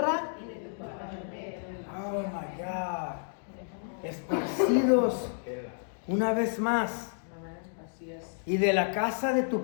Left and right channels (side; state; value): right; silent; digital silence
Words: Oh my God. Esparcidos una vez más. Y de la casa de